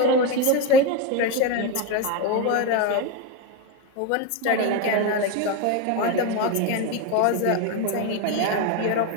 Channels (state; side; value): different; both; correlation 0.04